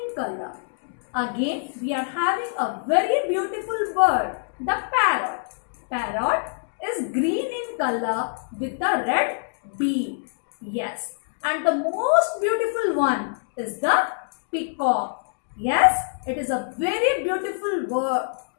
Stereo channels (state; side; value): silent; right; digital silence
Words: color. Again, we are having a very beautiful bird, the parrot. Parrot is green in color with a red beak. Yes. And the most beautiful one is the peacock. Yes, it is a very beautiful bird